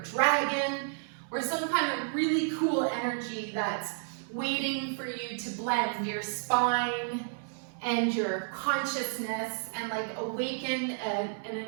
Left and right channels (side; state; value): left; silent; digital silence